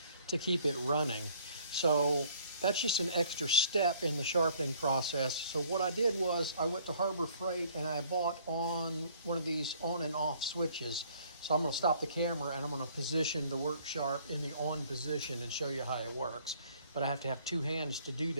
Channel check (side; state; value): both; inverted; correlation -0.58